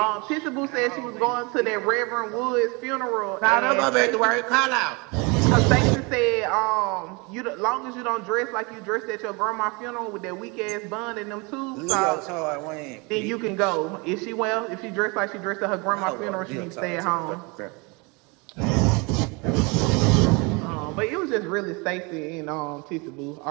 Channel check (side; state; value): left; quieter; 29.0 dB